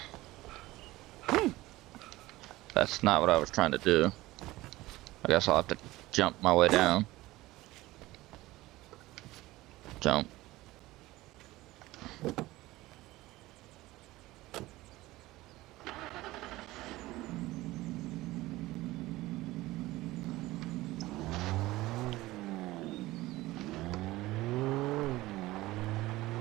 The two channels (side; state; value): left; quieter; 18.3 dB